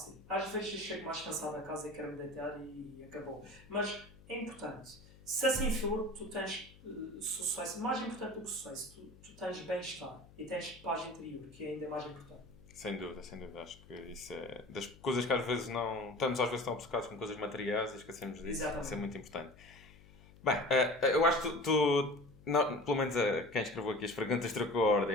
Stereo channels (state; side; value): noise; left; hum, 23 dB below the sound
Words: Às vezes eu chego mais cansado a casa e quero me deitar e acabou. Mas é importante. Se assim for, tu tens sucesso. Mais importante do que sucesso, tu tens bem-estar e tens paz interior, que é ainda mais importante. Sem dúvida. Acho que isso é das coisas que às vezes não... Estamos às vezes tão obcecados com coisas materiais e esquecemos disso. Exatamente. Isso é muito importante. Bem, eu acho que não, pelo menos quem escreveu aqui as perguntas trocou a